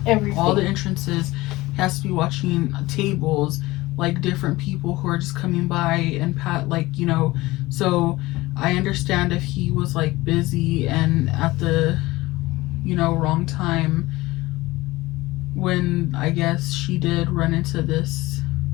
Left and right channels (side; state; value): right; quieter; 19.5 dB